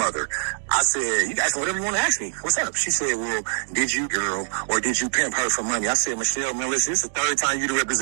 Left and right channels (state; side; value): silent; left; digital silence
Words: I said, you guys, whatever you want to ask me. What's up? She said, well, did you girl or did you pimp her for money? I said, Michelle, man, listen, this is the third time you